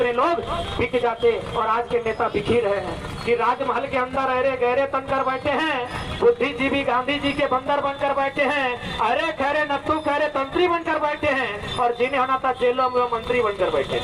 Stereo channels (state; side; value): identical; both; correlation 1.00